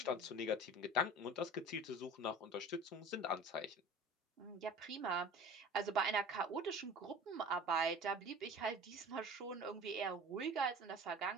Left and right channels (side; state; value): both; normal; correlation 0.40